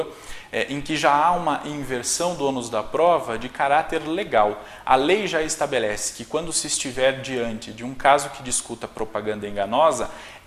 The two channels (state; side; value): identical; both; correlation 1.00